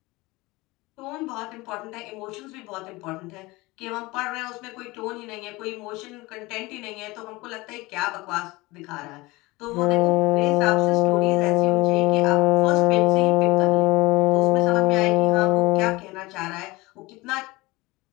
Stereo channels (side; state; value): right; quieter; 21.9 dB